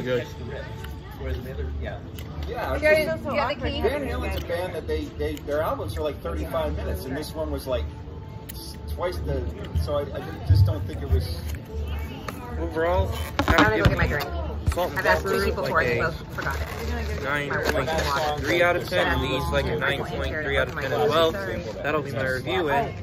good. Catch the riff. Whereas the other, yeah. Yeah, it's You just- got the key? Van Halen's a band that their albums are like 35 minutes, and this one was like twice the. So I just don't think it was. Overall, I'm gonna go get my drink. salt and I've asked two pepper people for like it, a both forgot it. 9.3 out of 10, and these like a 9.3 out of 10 as well. That'll be my review, and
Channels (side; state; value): both; identical; correlation 1.00